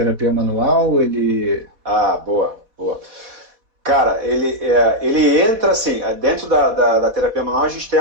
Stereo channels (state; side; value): late; left; 4.2 ms